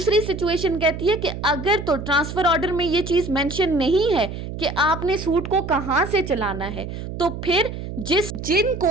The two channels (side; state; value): right; noise; hum, 8 dB below the sound